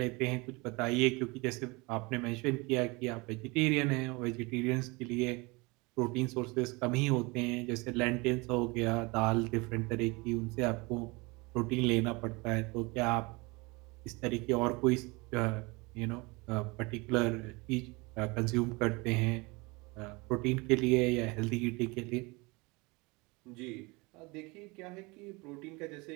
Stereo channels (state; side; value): quieter; left; 25.9 dB